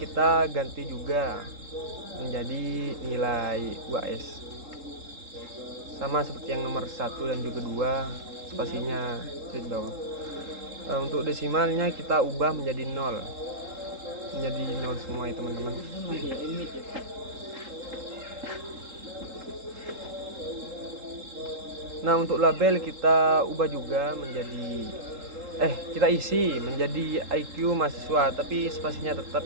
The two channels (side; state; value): left; late; 3.7 ms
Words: ganti juga menjadi nilai UAS. Sama seperti yang nomor 1 dan juga 2, spasinya straight bawah. Untuk desimalnya kita ubah menjadi 0. Menjadi 0 semua ya teman-teman. Nah, untuk label kita ubah juga menjadi kita isi menjadi IQ mahasiswa, tapi spasinya tetap